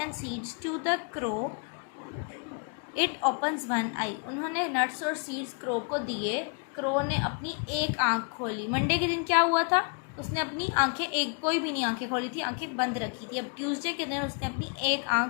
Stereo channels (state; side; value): quieter; right; 38.8 dB